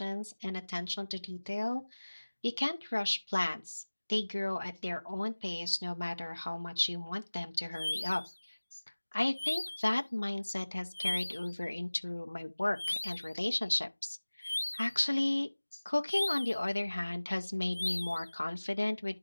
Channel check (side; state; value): both; inverted; correlation -1.00